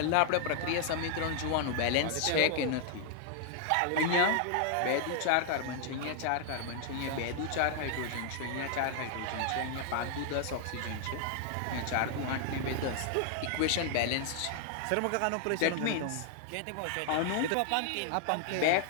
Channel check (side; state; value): both; different; correlation 0.00